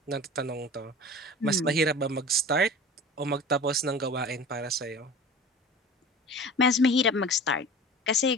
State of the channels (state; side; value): normal; both; correlation 0.38